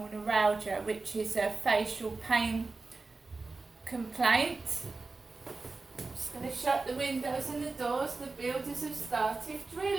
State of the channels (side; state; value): left; quieter; 3.8 dB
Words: neuralgia, which is a facial pain complaint, I'm just going to shut the windows and the doors. The builders have started